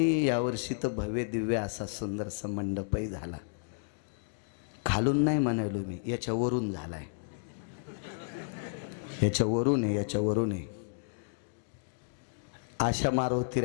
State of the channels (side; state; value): right; silent; digital silence